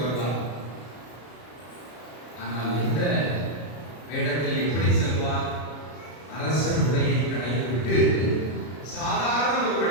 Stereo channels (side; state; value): right; late; 33 ms